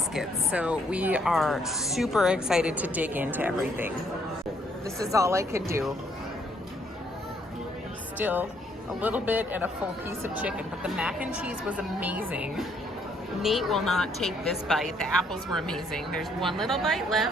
So we are super excited to dig into everything. This is all I could do. Still a little bit and a full piece of chicken, but the mac and cheese was amazing. Nate will not take this bite. The apples were amazing. There's one little bite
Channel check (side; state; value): both; normal; correlation 0.68